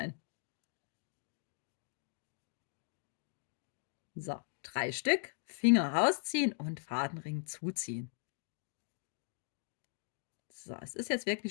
So, 3 Stück, Finger rausziehen und Fadenring zuziehen. So, es ist jetzt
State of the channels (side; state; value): right; silent; digital silence